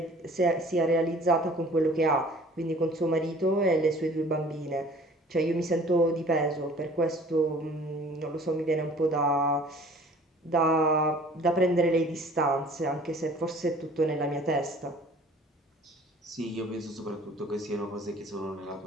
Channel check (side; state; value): both; normal; correlation 0.50